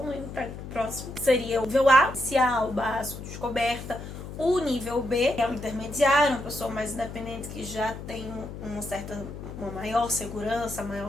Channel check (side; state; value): left; noise; hum, 10 dB below the sound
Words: para o próximo. Seria o nível A, inicial, básico, descoberta. O nível B é o intermediário, uma pessoa mais independente que já tem uma maior segurança, maior